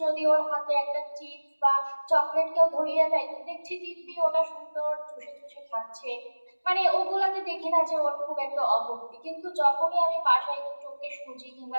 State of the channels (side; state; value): both; inverted; correlation -1.00